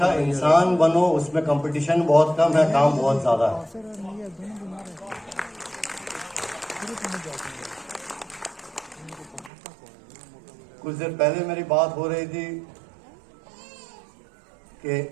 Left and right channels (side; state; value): left; drops out; at 9.5 s